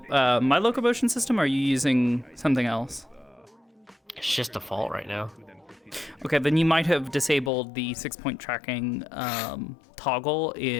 my locomotion system? Or are you using something else? It's just default right now. Okay, then you might have disabled the 6-point tracking toggle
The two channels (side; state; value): right; drops out; at 7.5 s